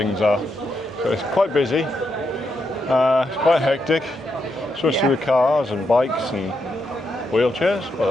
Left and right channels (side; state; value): both; normal; correlation 0.82